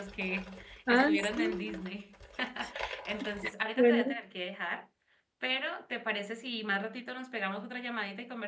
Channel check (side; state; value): both; identical; correlation 1.00